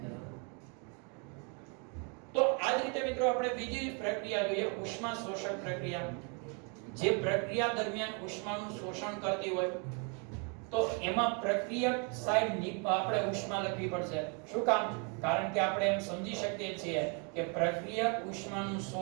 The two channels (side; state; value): left; quieter; 36.4 dB